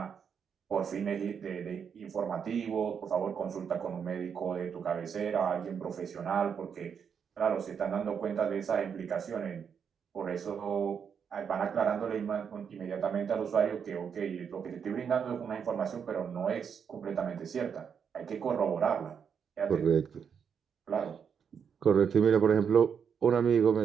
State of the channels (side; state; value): left; quieter; 7.1 dB